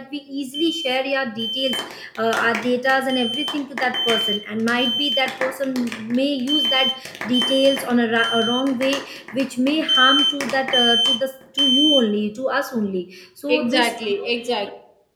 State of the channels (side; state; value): both; identical; correlation 1.00